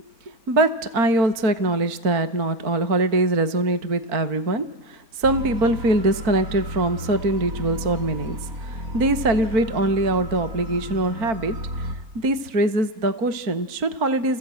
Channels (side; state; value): left; late; 4.4 ms